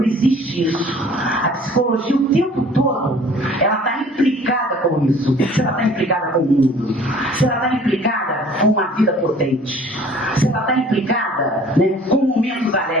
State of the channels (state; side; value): normal; both; correlation 0.51